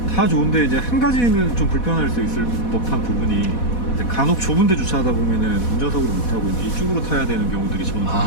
다 좋은데 이제 한 가지는 좀 불편할 수 있을 법한 부분이 이제 간혹 좁은데 주차하다 보면은 운전석으로 못 타고 이제 이쪽으로 타야 되는 경우들이 저는 좀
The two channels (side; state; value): right; late; 4.1 ms